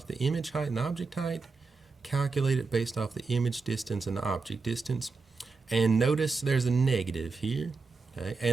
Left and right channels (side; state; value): left; quieter; 4.3 dB